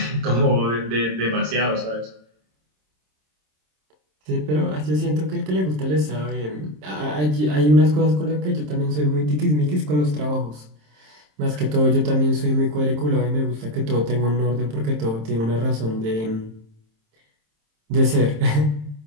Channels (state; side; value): late; left; 27 ms